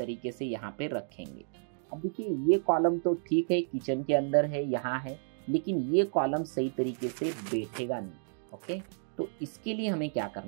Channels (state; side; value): silent; left; digital silence